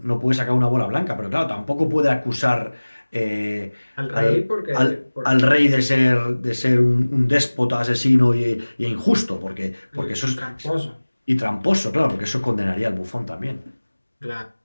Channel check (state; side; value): inverted; both; correlation -1.00